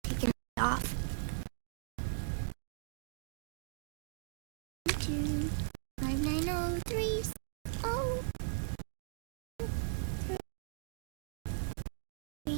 taken it off. 2 5903 oh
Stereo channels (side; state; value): left; silent; digital silence